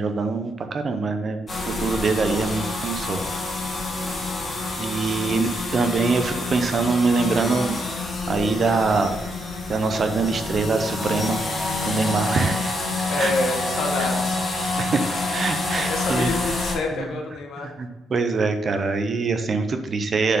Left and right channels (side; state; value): both; normal; correlation 0.78